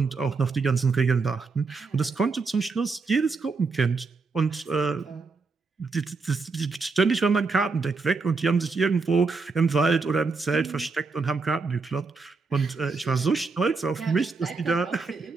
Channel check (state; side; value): quieter; left; 4.3 dB